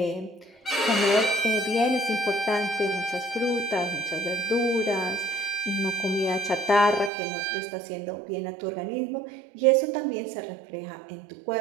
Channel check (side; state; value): left; drops out; at 7.1 s